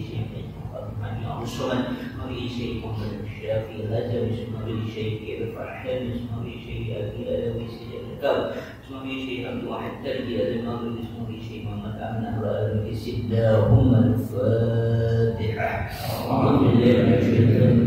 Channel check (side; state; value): both; identical; correlation 1.00